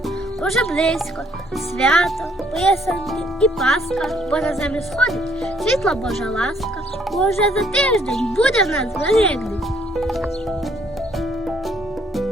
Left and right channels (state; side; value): normal; both; correlation 0.66